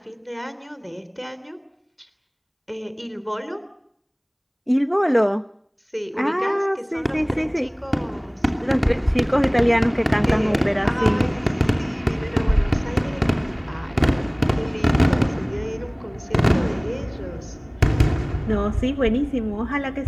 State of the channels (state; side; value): identical; both; correlation 1.00